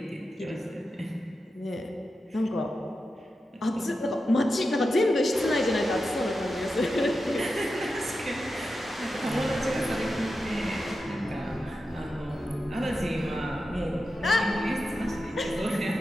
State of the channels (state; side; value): normal; both; correlation 0.90